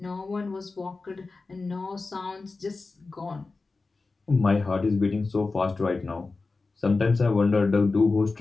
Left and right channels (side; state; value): right; quieter; 3.8 dB